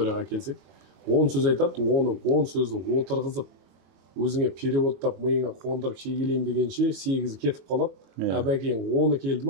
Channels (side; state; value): left; late; 22 ms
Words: келсек, 10 сөз айтады, оны 10 сөзді отырғызып, өзіңе переводтап, миыңа қондырып шегелейім дегенше 8 кетіп қалады. Бәкең 10 келді